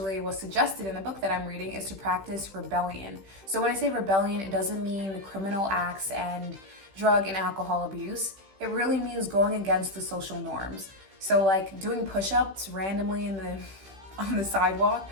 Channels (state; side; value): late; left; 15 ms